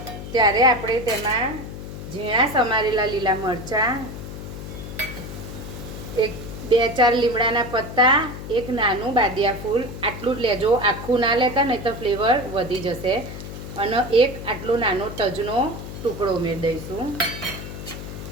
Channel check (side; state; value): left; noise; hum, 10 dB below the sound